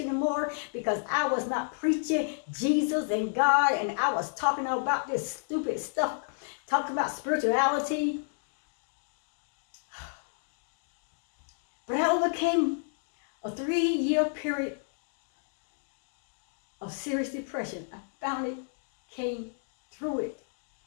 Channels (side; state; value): right; silent; digital silence